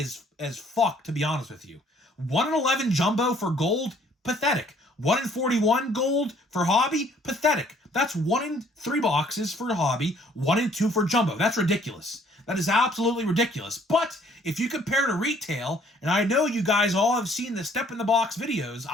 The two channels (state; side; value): normal; both; correlation 0.60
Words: as fuck, to be honest with you. 1 in 11 jumbo for gold, pathetic. 1 in 41 gold for hobby, pathetic. That's 1 in 3 boxes for hobby, 1 in 2 for jumbo. That's ridiculous. That is absolutely ridiculous. But if you compare to retail, and I know you guys all have seen the Step in the Box videos,